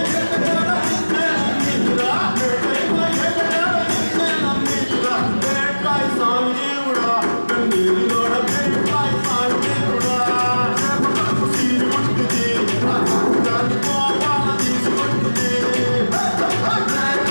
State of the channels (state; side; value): inverted; both; correlation -1.00